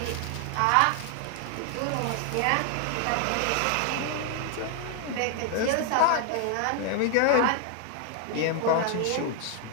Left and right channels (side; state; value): both; different; correlation 0.00